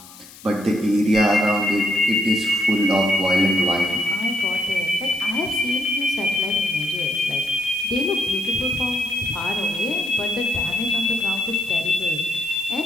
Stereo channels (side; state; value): left; noise; hiss, 20 dB below the sound